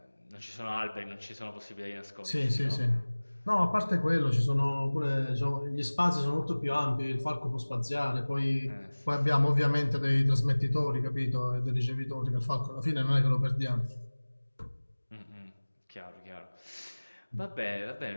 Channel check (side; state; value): both; inverted; correlation -1.00